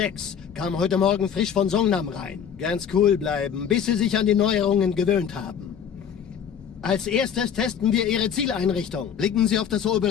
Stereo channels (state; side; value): quieter; right; 8.0 dB